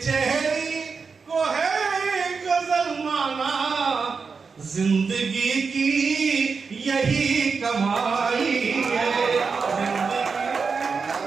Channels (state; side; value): quieter; left; 5.1 dB